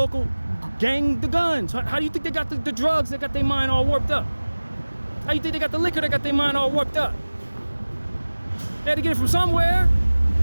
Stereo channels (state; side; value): inverted; both; correlation -1.00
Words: gang the guns? How do you think they got the drugs that got their mind all warped up? How you think they got the liquor that got their mind all warped up? They had to get it from somewhere.